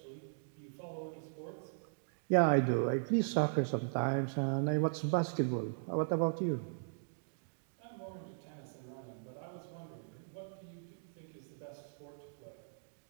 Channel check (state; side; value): silent; left; digital silence